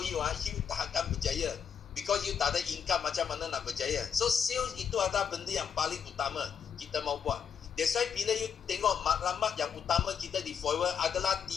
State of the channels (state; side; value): quieter; right; 7.4 dB